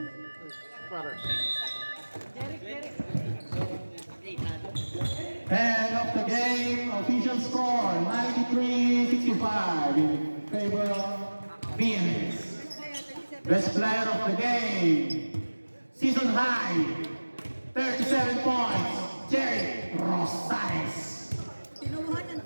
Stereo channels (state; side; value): inverted; both; correlation -1.00